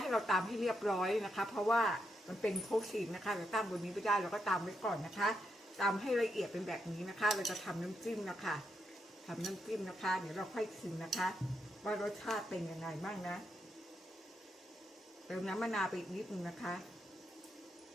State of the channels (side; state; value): both; normal; correlation 0.82